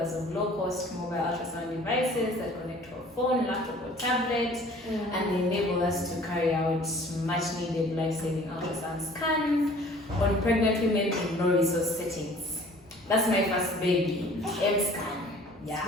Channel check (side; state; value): both; normal; correlation 0.51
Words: of low-cost mobile ultrasound devices that connect to a phone, laptop, or tablet, and they enable us to carry out much-needed life-saving ultrasound scans on pregnant women in low-resource settings. That's my first baby, MSCAN. Yeah.